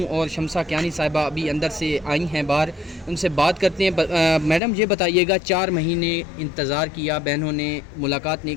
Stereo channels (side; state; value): right; drops out; at 4.6 s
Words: اور شمسہ کیانی صاحبہ ابھی اندر سے آئی ہیں باہر، ان سے بات کرتے ہیں۔ میڈم یہ بتائیے گا، 4 مہینے انتظار کیا، بہنوں نے ملاقات نہیں